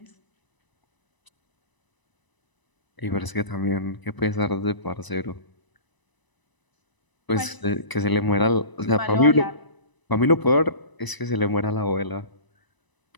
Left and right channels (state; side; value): late; right; 1.0 ms